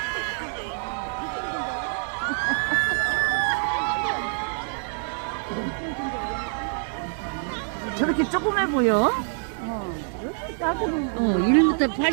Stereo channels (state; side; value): silent; left; 59 dB below the other